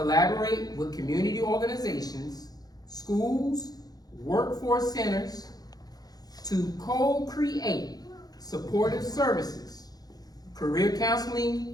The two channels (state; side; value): late; right; 0.19 ms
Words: with community organizations, schools, workforce centers to co-create supportive services, career